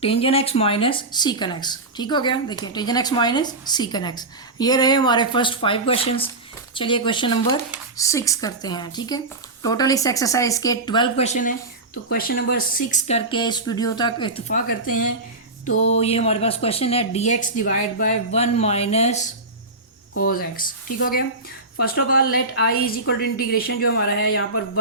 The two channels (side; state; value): left; quieter; 3.1 dB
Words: टेंजेंट एक्स माइनस सीकन एक्स, ठीक हो गया। देखिए टेंजेंट एक्स माइनस सीकन एक्स, ये रहे हमारे फर्स्ट 5 क्वेश्चंस। चलिए क्वेश्चन नंबर 6 करते हैं, ठीक है। टोटल इस एक्सरसाइज के 12 क्वेश्चन हैं, तो क्वेश्चन नंबर 6 करके इस वीडियो तक इत्तेफाक करते हैं। तो ये हमारे पास क्वेश्चन है d x divide by 1 minus cos x, ठीक हो गया। First of all let I is equal to integration जो हमारा है यहाँ पर